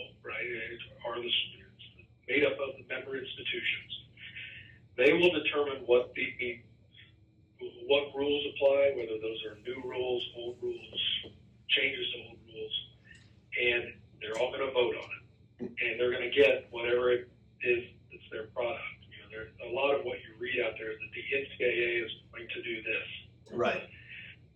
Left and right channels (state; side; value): identical; both; correlation 1.00